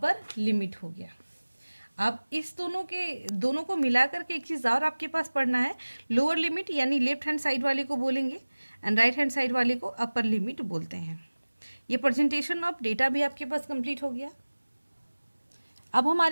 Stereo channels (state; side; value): inverted; both; correlation -1.00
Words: लिमिट हो गया। अब इस दोनों को मिला करके एक चीज़ और आपके पास पढ़ना है। लोअर लिमिट यानी लेफ्ट हैंड साइड वाले को बोलेंगे एंड राइट हैंड साइड वाले को अपर लिमिट बोलते हैं। ये प्रेजेंटेशन ऑफ डेटा भी आपके पास कंप्लीट हो गया। अब